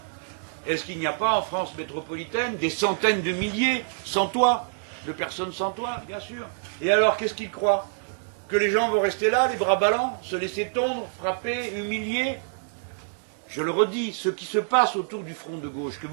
Est-ce qu'il n'y a pas en France métropolitaine des centaines de milliers sans toit, de personnes sans toit, bien sûr? Et alors, qu'est-ce qu'ils croient? Que les gens vont rester là, les bras ballants, se laisser tondre, frapper, humilier? Je le redis, ce qui se passe autour du front de gauche, que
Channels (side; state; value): left; silent; digital silence